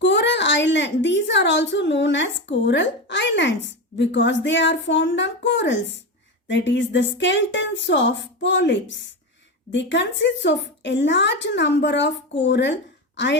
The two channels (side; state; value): both; normal; correlation 0.18